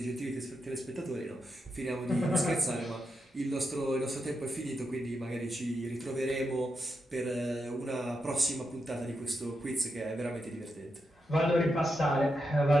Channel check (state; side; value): normal; both; correlation 0.85